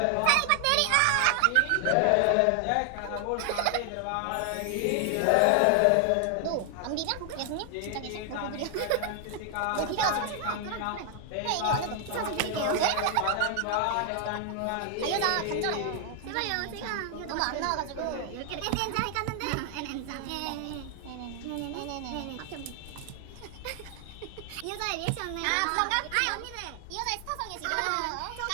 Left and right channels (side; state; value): both; different; correlation 0.00